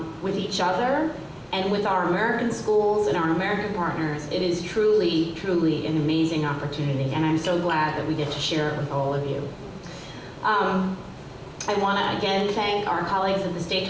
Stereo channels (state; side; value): identical; both; correlation 1.00